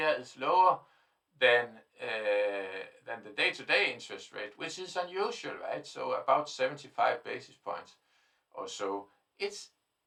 is lower than the day-to-day interest rate, which is unusual, right? So about 75 basis points or so.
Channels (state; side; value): identical; both; correlation 1.00